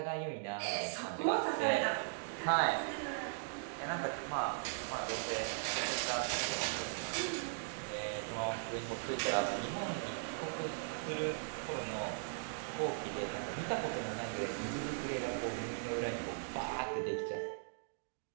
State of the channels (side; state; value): left; silent; digital silence